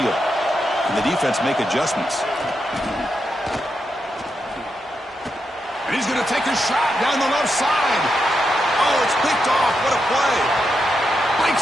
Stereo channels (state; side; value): normal; both; correlation 0.84